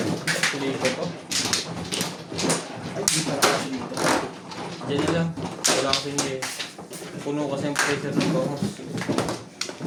Sukli ko. Diyan na lang. Wala kasi hindi. Puno kasi ang pressure ng bangos.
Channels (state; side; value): identical; both; correlation 1.00